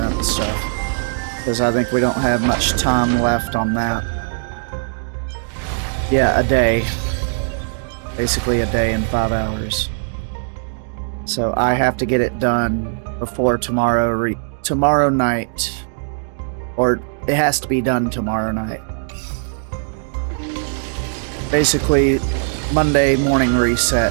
stuff. Because I think we don't have much time left on that. Yeah, a day. Basically a day and 5 hours. So I have to get it done before tomorrow night. Or it has to be done tomorrow night. Basically, Monday morning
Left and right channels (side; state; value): left; silent; digital silence